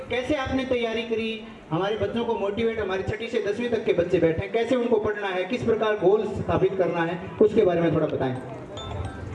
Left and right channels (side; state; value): both; identical; correlation 1.00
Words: कैसे आपने तैयारी करी, हमारे बच्चों को मोटिवेट, हमारी 6ठी से 10वीं तक के बच्चे बैठे हैं, कैसे उनको पढ़ना है, किस प्रकार गोल स्थापित करना है, उसके बारे में थोड़ा बताएं।